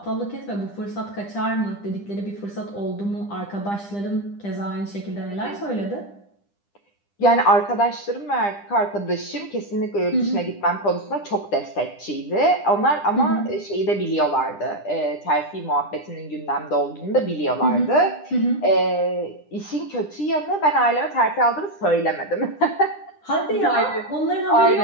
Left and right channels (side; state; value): right; late; 10 ms